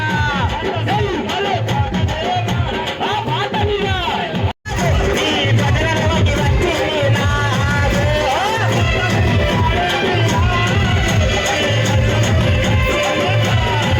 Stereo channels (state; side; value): identical; both; correlation 1.00